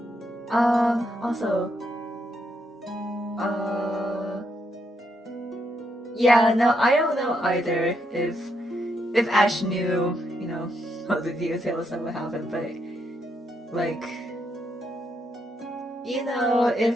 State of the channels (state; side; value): normal; both; correlation 0.78